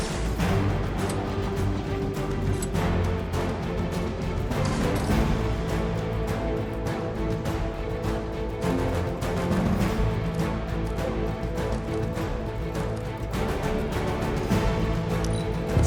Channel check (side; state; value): both; identical; correlation 1.00